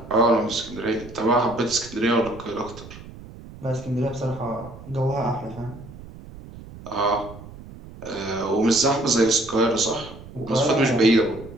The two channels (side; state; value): right; noise; rumble, 16 dB below the sound